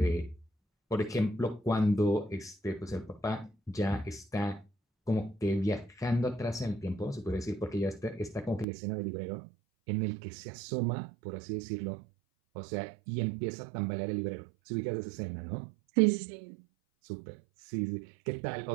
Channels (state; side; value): drops out; left; at 8.7 s